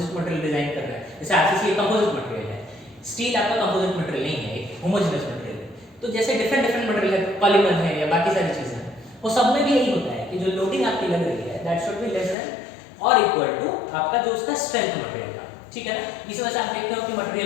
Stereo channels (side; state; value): right; drops out; at 12.4 s